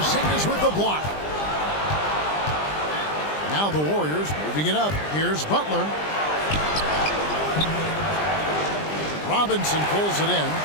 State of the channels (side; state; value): right; late; 20 ms